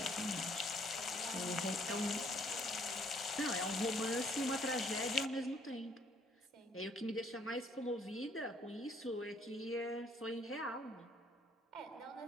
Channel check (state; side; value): normal; both; correlation 0.64